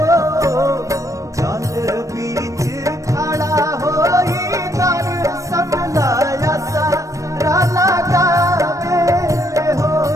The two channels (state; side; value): late; left; 0.16 ms